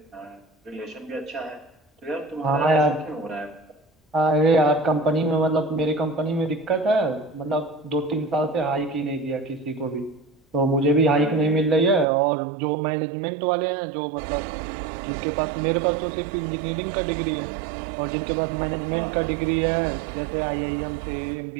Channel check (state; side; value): drops out; left; at 12.1 s